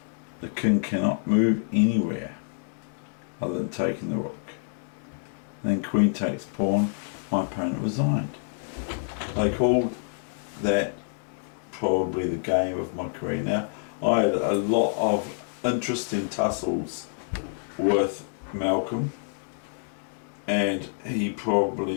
The king cannot move anywhere other than taking the rook. And then queen takes pawn, my opponent resigned. They called that probably the game of my career. Now, I had a lot of interesting tussles with Malcolm, and he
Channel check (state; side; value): silent; right; digital silence